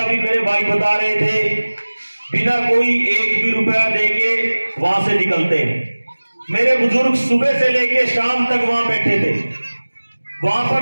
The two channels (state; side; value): inverted; both; correlation -1.00